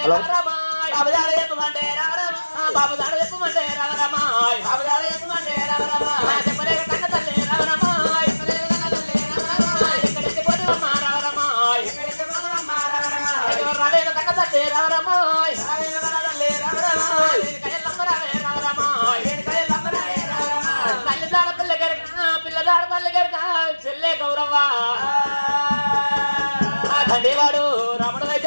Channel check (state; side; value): inverted; both; correlation -1.00